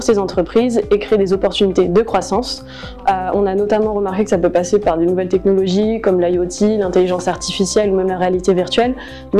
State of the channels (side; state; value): both; identical; correlation 1.00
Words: ces entreprises et crée des opportunités de croissance. On a notamment remarqué que ça peut passer par des nouvelles technologies comme l'IoT, l'intelligence artificielle ou même la réalité virtuelle,